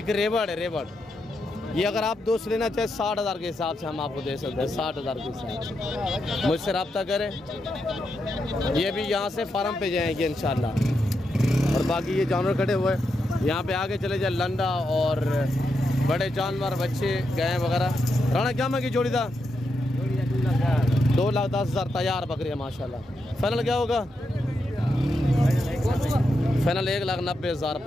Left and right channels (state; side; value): normal; both; correlation 0.84